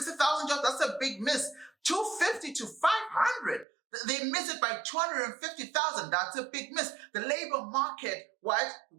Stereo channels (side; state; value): left; drops out; at 3.7 s